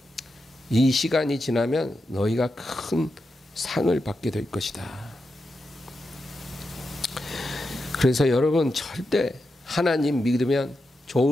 이 시간이 지나면 너희가 큰 상을 받게 될 것이다. 그래서 여러분, 절대 하나님 믿으면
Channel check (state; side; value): normal; both; correlation 0.88